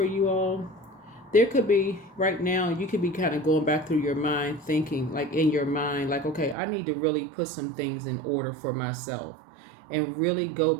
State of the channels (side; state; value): left; drops out; at 6.6 s